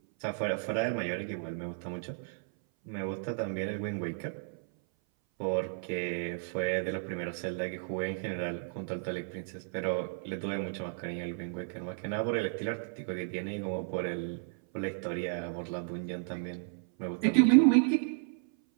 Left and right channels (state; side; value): silent; left; 56 dB below the other